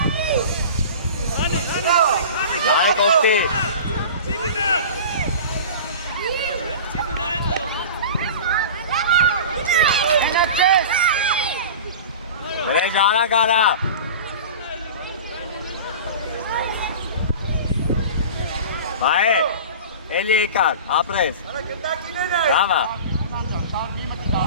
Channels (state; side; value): inverted; both; correlation -0.35